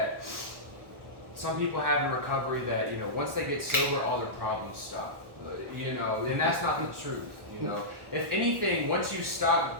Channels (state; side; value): late; left; 1.1 ms